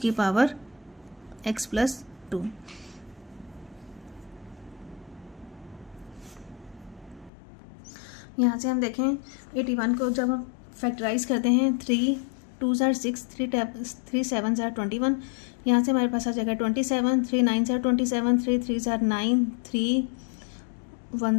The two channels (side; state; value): right; drops out; at 7.3 s